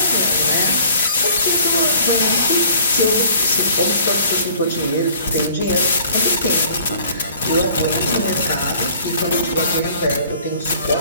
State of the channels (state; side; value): inverted; both; correlation -0.53